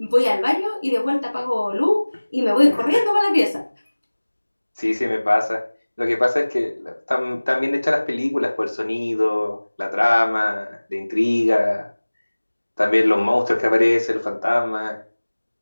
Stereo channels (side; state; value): both; inverted; correlation -1.00